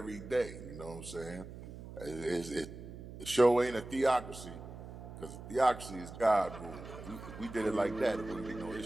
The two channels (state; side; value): noise; right; hum, 13 dB below the sound